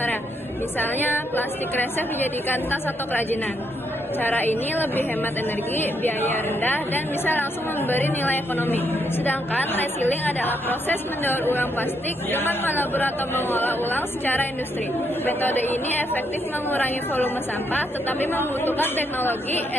Misalnya, plastik kresek dijadikan tas atau kerajinan. Cara ini lebih hemat energi, biaya rendah, dan bisa langsung memberi nilai ekonomi. Sedangkan recycling adalah proses mendaur ulang plastik dengan melabur atau mengolah ulang secara industri. Metode ini efektif mengurangi volume sampah, tetapi membutuhkan teknologi,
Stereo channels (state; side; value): normal; both; correlation 0.76